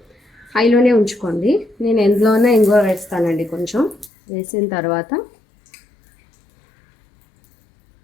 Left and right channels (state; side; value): drops out; right; at 4.1 s